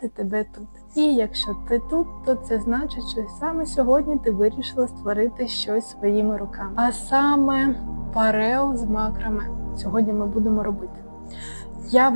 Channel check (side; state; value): both; inverted; correlation -1.00